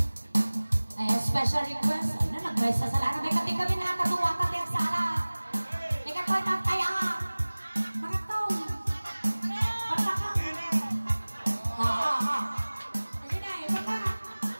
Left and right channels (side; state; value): both; inverted; correlation -1.00